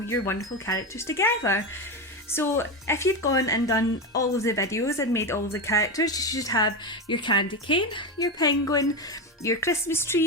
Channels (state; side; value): normal; both; correlation 0.15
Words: your wonderful characters together. So if you've gone and done all of the videos and made all the characters, you should have your candy cane, your penguin, your Christmas